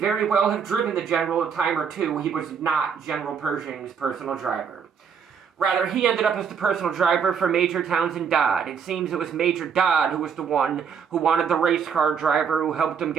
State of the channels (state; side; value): quieter; left; 6.8 dB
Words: well have driven the general a time or two, he was not General Pershing's personal driver. Rather, he ended up as the personal driver for Major Townsend Dodd. It seems it was Major Dodd who was the one who wanted the race car driver who helped him